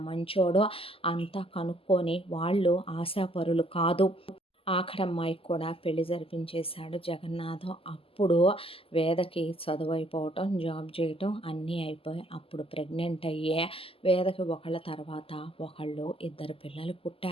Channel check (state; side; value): late; right; 0.26 ms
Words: మంచోడు అంతా కనుక్కొని వాళ్ళు ఆశాపరులు కాదు ఆఖరమ్మాయికి కూడా పెళ్లి జరిపించేశాడు జగన్నాథం అప్పుడు వేదకి చదువు అయిపోవటం జాబ్ చేయటం అన్నీ అయిపోయి అప్పుడు ప్రెగ్నెంట్ అయ్యే వేదకి ఒకళ్ళ తర్వాత ఒకళ్ళు 2 పిల్లలు